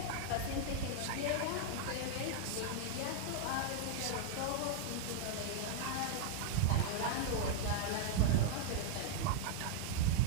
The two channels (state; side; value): different; both; correlation -0.01